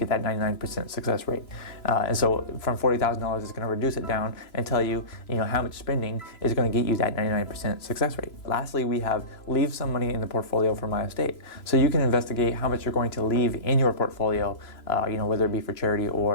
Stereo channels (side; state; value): right; late; 3.0 ms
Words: that 99% success rate. And so from $40,000, it's going to reduce it down and tell you, how much spending is going to get you that 99% success rate. Lastly, we have leave some money in the portfolio for my estate. So you can investigate how much you're going to leave in your portfolio, whether it be for charity